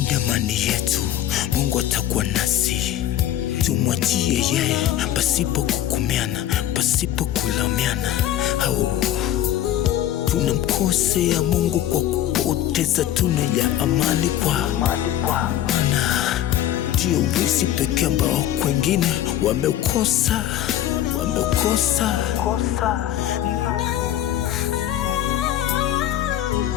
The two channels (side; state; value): right; quieter; 12.2 dB